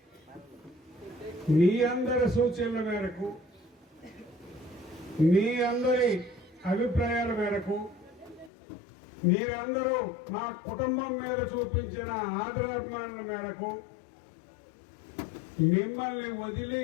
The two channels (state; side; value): drops out; right; at 8.5 s